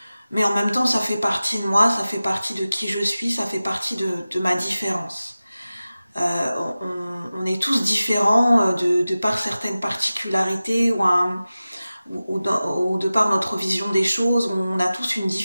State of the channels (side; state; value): both; inverted; correlation -0.96